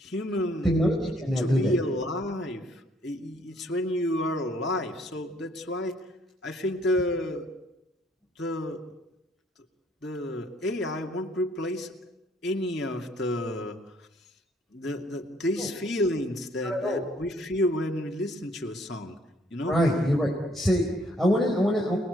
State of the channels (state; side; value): normal; both; correlation 0.65